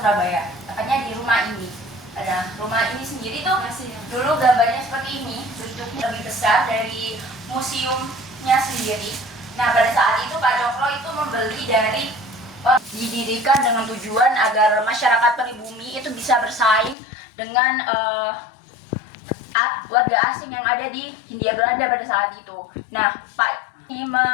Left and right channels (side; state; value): right; drops out; at 16.9 s